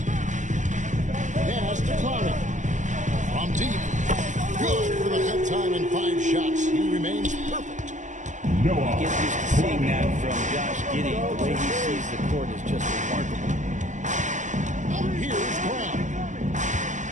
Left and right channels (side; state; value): left; late; 0.36 ms